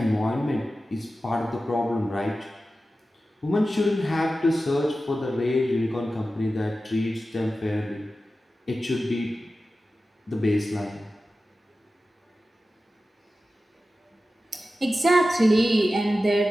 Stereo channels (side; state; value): both; normal; correlation 0.94